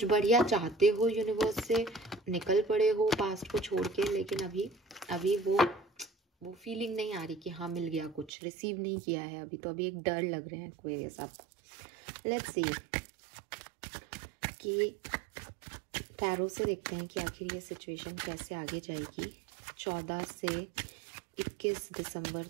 बढ़िया चाहते हो यूनिवर्स से, निकल पड़े हो पास्ट को छोड़ के, लेकिन अभी वो फीलिंग नहीं आ रही कि हाँ मिल गया, कुछ रिसीव नहीं किया है अभी। तो अभी एक डर लग रहे हैं एक्वेरियस आपको। लेट्स सी कि टैरो से देखते हैं कि आखिर ये सिचुएशन कैसे आगे जाएगी 14 से 21 दिसंबर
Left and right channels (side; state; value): left; drops out; at 8.3 s